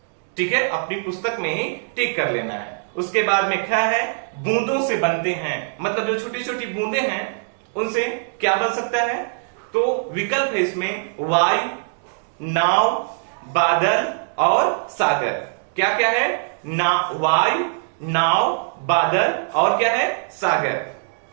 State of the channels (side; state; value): left; silent; digital silence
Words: ठीक है, अपनी पुस्तक में ही टिक कर लेना है। उसके बाद में ख है, बूंदों से बनते हैं। मतलब जो छोटी छोटी बूंदे हैं उनसे क्या बन सकता है, तो विकल्प है इसमें वायु, नाव, बादल और सागर। क्या क्या है, वायु, नाव, बादल और क्या है, सागर।